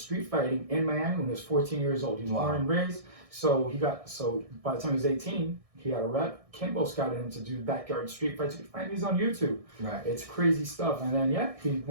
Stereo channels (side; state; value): left; late; 1.6 ms